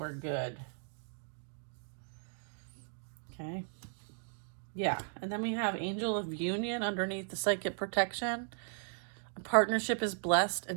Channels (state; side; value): silent; left; digital silence